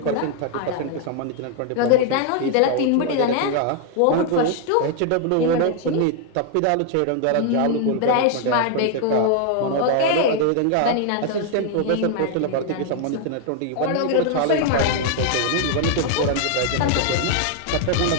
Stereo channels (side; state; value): both; different; correlation 0.00